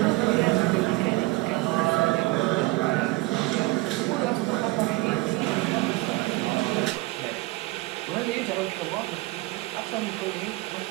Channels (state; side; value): quieter; left; 21.4 dB